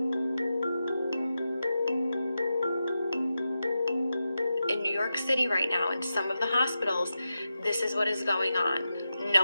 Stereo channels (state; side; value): inverted; both; correlation -0.90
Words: In New York City right now, in some of the hospitals, this is what is going on. No